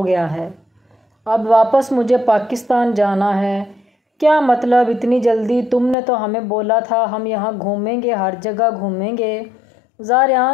گیا ہے، اب واپس مجھے پاکستان جانا ہے۔ کیا مطلب اتنی جلدی؟ تم نے تو ہمیں بولا تھا ہم یہاں گھومیں گے، ہر جگہ گھومیں گے۔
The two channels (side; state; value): right; drops out; at 6.0 s